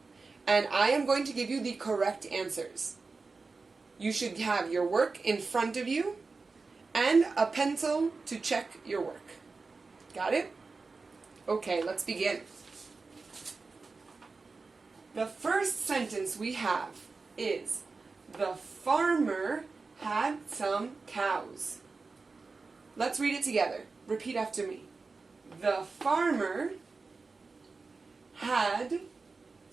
and I am going to give you the correct answers. You should have your work in front of you and a pencil to check your work. Got it? Okay, let's begin. The first sentence we have is, the farmer had some cows. Let's read it together. Repeat after me. The farmer had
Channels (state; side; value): quieter; left; 4.1 dB